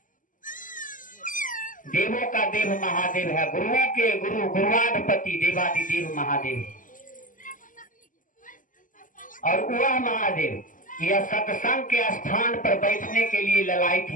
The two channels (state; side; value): late; right; 0.38 ms